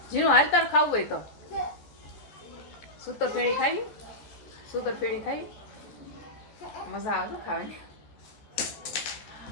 જીનું હાલ તાર ખાવું હોય તો સૂતર ફેણી ખાવી. સૂતર ફેણી ખાવી મજા આવે ખાવાની.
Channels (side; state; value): right; late; 14 ms